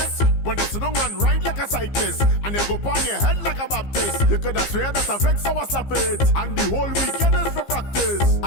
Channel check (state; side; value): late; right; 15 ms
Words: When you sit down and ride like a cyclist, and you go on your head like a Baptist, you could have swear that affects our slap it, and the whole weekend is for practice.